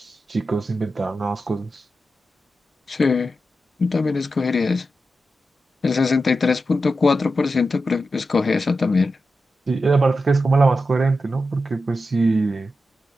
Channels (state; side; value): normal; both; correlation 0.90